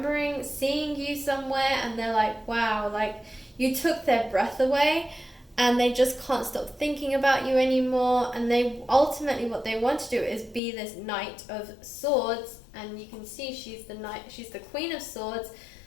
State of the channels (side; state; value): right; drops out; at 10.6 s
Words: seeing you somewhere, and they're like, wow, like you took their breath away, and they just can't stop thinking about you anymore. And they ultimately, what they want to do is be this Knight of Swords, and you can see she's the Queen of Swords.